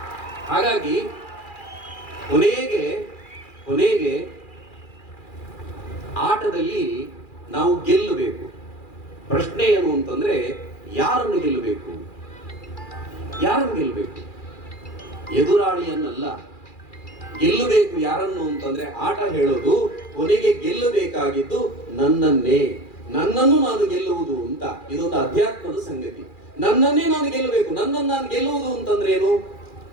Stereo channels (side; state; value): right; late; 2.4 ms